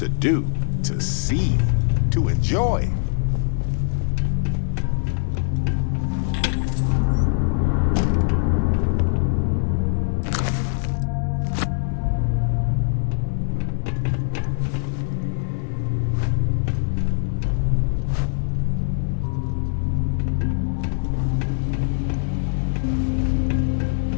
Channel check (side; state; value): right; silent; 64 dB below the other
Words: do, to see, to enjoy.